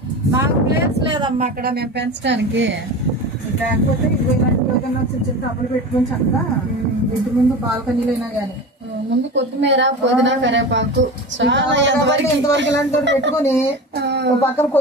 మాకు ప్లేస్ లేదమ్మా అక్కడ మేము పెంచడానికి. లేకపోతే ఇలాంటి ఏదైనా చిన్న చిన్న టబ్బులు పెట్టుకొని చక్కగా ఇంటి ముందు బాల్కనీలో అయినా కానీ ముందు కొత్తిమీర పుదీనా కరివేపాకు ఇంతవరకు ఇలాంటి పెట్టుకొని ఒక పక్కన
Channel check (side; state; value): both; normal; correlation 0.29